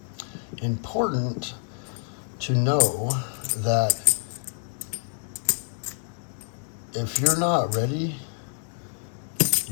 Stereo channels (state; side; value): silent; right; 60 dB below the other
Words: important to know that if you're not ready,